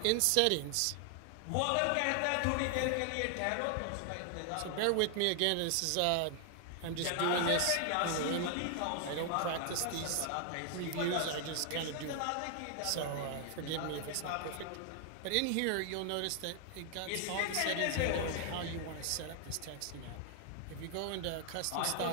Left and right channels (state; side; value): different; both; correlation 0.00